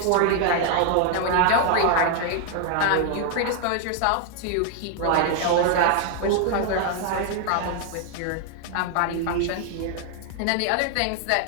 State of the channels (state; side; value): different; both; correlation 0.00